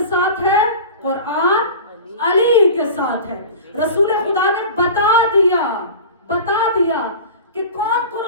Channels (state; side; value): inverted; both; correlation -0.35